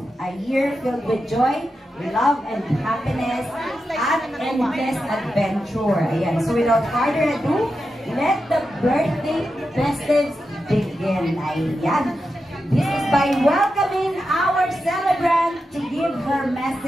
a year filled with joy, love, and happiness, at endless adventure. Ayan, so without further ado, let the birthday festives begin. Ayan. This is by welcoming our celebrant to give her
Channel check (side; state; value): both; normal; correlation 0.89